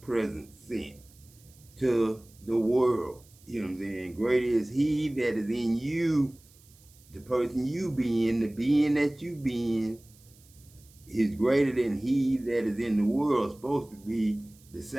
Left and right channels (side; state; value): right; noise; hiss, 27 dB below the sound